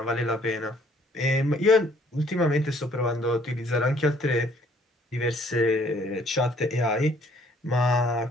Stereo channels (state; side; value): normal; both; correlation 0.61